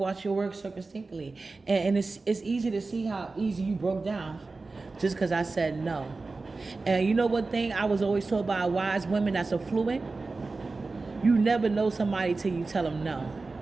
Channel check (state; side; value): quieter; left; 3.7 dB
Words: your work circumspectly. And it's easy to see how easy you broke down just because I said no. And you know what thing I was always told by wise women that's affluent? You never know somebody till you tell them no.